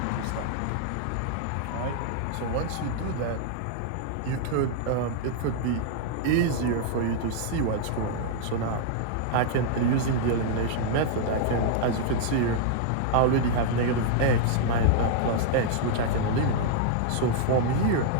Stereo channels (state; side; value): different; both; correlation -0.01